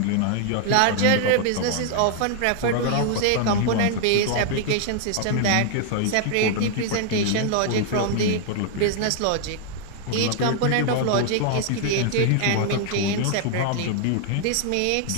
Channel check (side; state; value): both; different; correlation 0.00